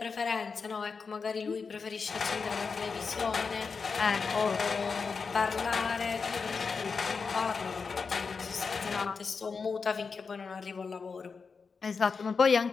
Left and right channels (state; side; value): quieter; right; 5.1 dB